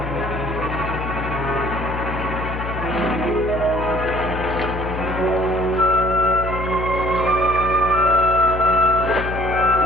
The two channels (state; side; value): noise; left; hum, 6 dB below the sound